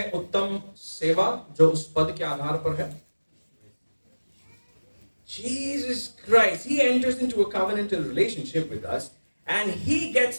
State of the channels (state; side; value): inverted; both; correlation -1.00